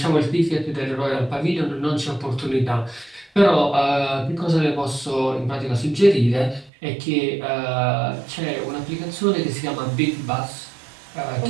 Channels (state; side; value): drops out; left; at 6.7 s